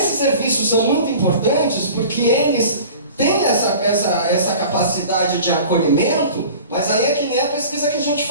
serviços são muito importantes porque eles têm essa capacidade de acolhimento, mas aí é que nem a pesquisa que a gente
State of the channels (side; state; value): both; inverted; correlation -0.41